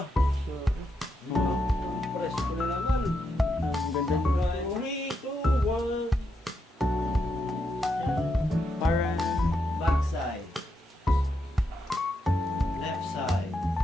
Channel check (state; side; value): normal; both; correlation 0.82